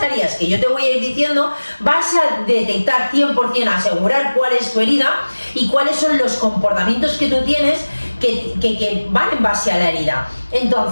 que yo te voy a ir diciendo, vas a detectar 100%, asegurar cuál es tu herida y cuáles son los comportamientos que tú tienes que van en base a la herida.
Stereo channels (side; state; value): both; inverted; correlation -1.00